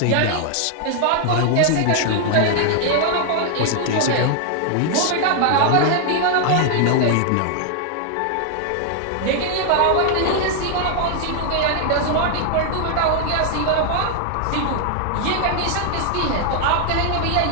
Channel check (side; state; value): both; different; correlation 0.00